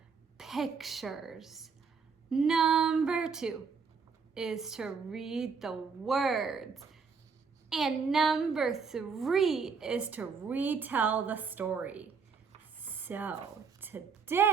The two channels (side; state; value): left; quieter; 5.5 dB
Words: pictures. Number 2 is to read the words. And number 3 is to retell the story. So